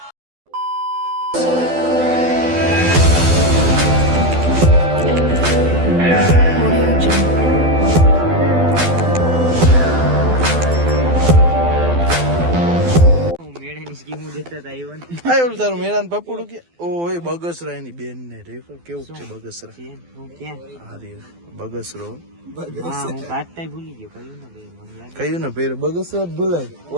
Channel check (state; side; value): late; left; 12 ms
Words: તારું મેળાન પપડું કે ઓય બગસરા એની બેન ને રેફર કેવું છે બગસરા બગસરો કયું ને પેર બગસરા જ ભૂલાય